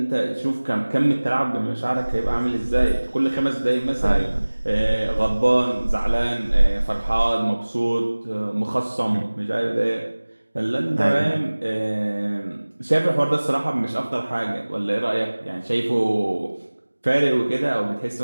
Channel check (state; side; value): inverted; both; correlation -1.00